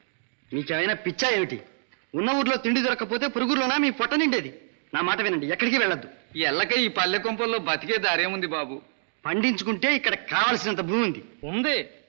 మీకేమైనా పిచ్చా ఏమిటి? ఉన్న ఊర్లో తిండి దొరకకపోతే పురుగులోనా మీ పొట్ట నిండేది. నా మాట వినండి, ఎక్కడికి వెళ్ళొద్దు. ఎల్లక ఈ పల్లె కొంపల్లో బతికే దారేముంది బాబు. పండించుకుంటే ఇక్కడ కావలసినంత భూమి ఉంది. ఉంది,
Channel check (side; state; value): left; silent; digital silence